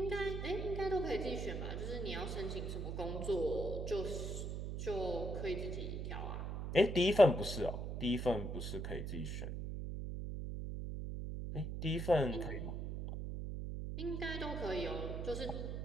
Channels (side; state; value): right; noise; hum, 4 dB below the sound